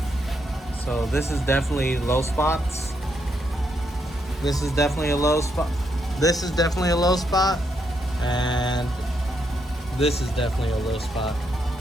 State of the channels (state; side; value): normal; both; correlation 0.78